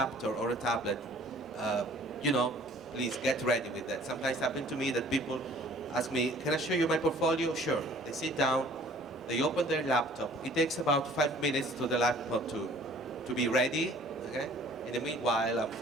or a tablet, you know, please get ready with that. Sometimes happen to me that people ask me, can I show you my portfolio? Sure. They sit down, they open their laptop. It takes about 5 minutes to the laptop to be ready. Okay? In the meanwhile, I'm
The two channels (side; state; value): both; normal; correlation 0.53